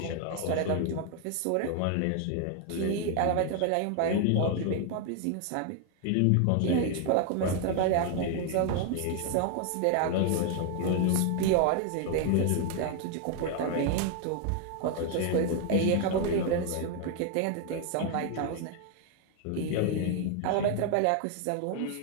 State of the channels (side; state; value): both; different; correlation 0.00